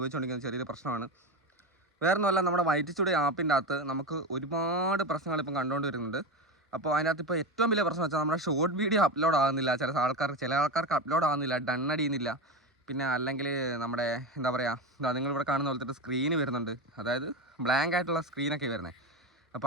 ചെറിയൊരു പ്രശ്നമാണ്. വേറൊന്നുമല്ല, നമ്മുടെ വൈറ്റ് സ്റ്റുഡിയോ ആപ്പിൻ്റെ അകത്ത് നമുക്ക് ഒരുപാട് പ്രശ്നങ്ങൾ ഇപ്പം കണ്ടുകൊണ്ട് വരുന്നുണ്ട്. അപ്പോൾ അതിനകത്ത് ഇപ്പോൾ ഏറ്റവും വലിയ പ്രശ്നം വെച്ചാൽ നമ്മുടെ ഷോർട്ട് വീഡിയോ അപ്ലോഡ് ആകുന്നില്ല. ചില ആൾക്കാർക്ക് അപ്ലോഡ് ആകുന്നില്ല, ഡൺ അടിയുന്നില്ല. പിന്നെ അല്ലെങ്കിൽ നമ്മുടെ എന്താ പറയുക, നിങ്ങളിവിടെ കാണുന്ന പോലത്തെ സ്ക്രീന് വരുന്നുണ്ട്, അതായത് ബ്ലാങ്ക് ആയിട്ടുള്ള സ്ക്രീനൊക്കെ വരുന്നത്.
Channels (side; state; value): both; normal; correlation 0.19